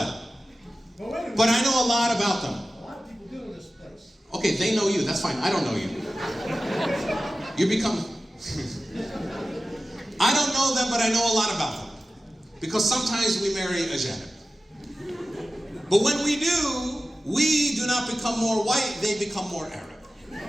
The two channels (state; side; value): normal; both; correlation 0.95